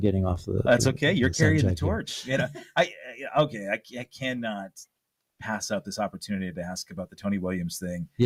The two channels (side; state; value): both; identical; correlation 1.00